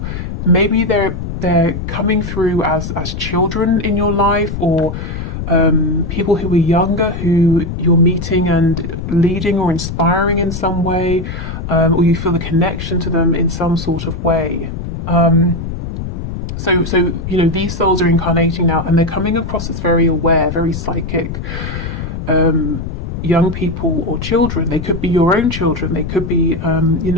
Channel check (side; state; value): left; noise; rumble, 6 dB below the sound